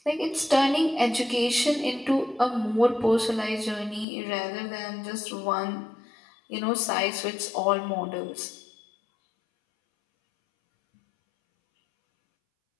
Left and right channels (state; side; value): drops out; right; at 4.0 s